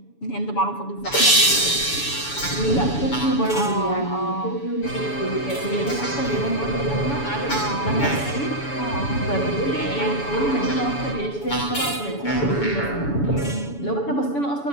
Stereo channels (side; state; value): right; late; 7.1 ms